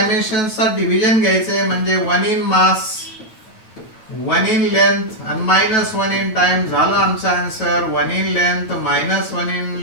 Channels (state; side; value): late; right; 9.2 ms